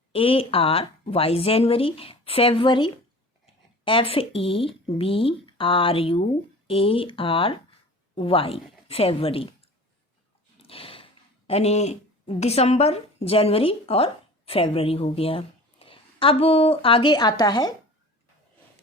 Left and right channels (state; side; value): normal; both; correlation 0.40